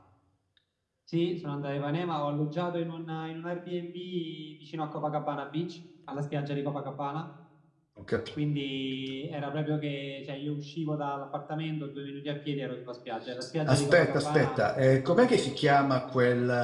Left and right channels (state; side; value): identical; both; correlation 1.00